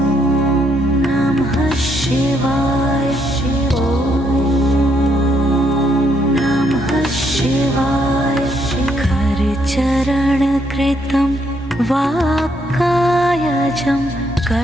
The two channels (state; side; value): normal; both; correlation 0.73